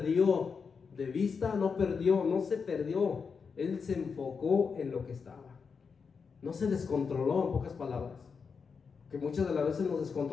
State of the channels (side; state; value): right; quieter; 5.6 dB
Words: de vista, no se perdió. Él se enfocó en lo que estaba. No se descontroló, en pocas palabras. Que muchas de las veces nos